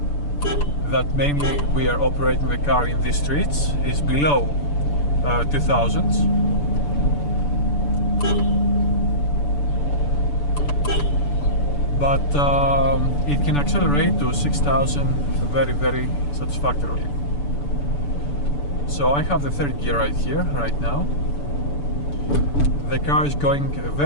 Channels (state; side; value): late; right; 6.9 ms